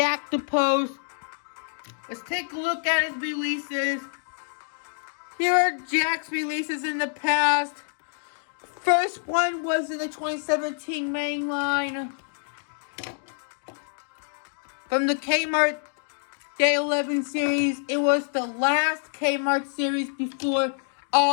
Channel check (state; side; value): silent; right; digital silence